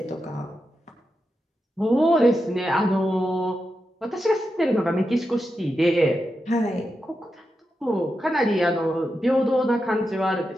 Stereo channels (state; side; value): normal; both; correlation 0.88